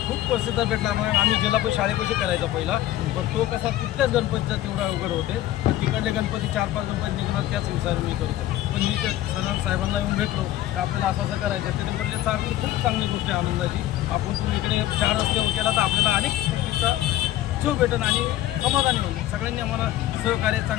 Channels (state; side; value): quieter; right; 14.0 dB